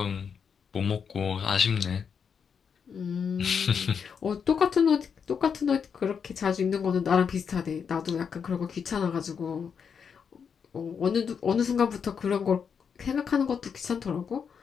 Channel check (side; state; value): right; quieter; 6.7 dB